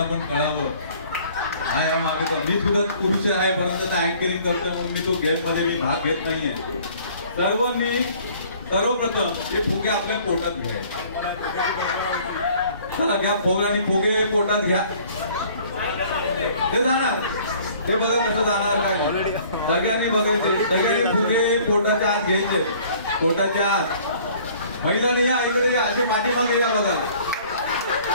पण कळावं हा या मागे मी सुद्धा पुरुष आहे परंतु आता अँकरिंग करतो म्हणून मी तो गेम मध्ये मी भाग घेत नाहीये. सर्वप्रथम हे फुगे आपल्या पोटात घ्यायचे. चला घ्या फुगे आणि फुगे पोटात घ्या. ते जाणार ते बघा कसं जाणार काय नाही. सगळ्यांनी बघायचे सगळ्यांनी फुगे पोटाच्या आत घ्यायचे. पोटाच्या आत महिलांनी या इकडे या असे पाठीमागे या बघा.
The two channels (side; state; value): both; inverted; correlation -0.54